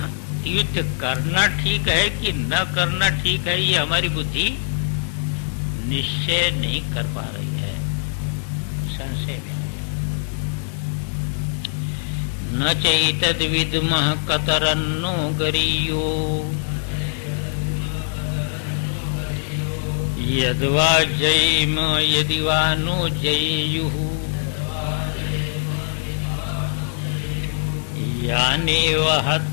युद्ध करना ठीक है कि न करना ठीक है, ये हमारी बुद्धि निश्चय नहीं कर पा रही है, संशय में। न चैतद विद्मः कतरन्नो गरीयो यद्वा जयेम यदि वा नो जयेयुः यानेव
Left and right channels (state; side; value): silent; right; digital silence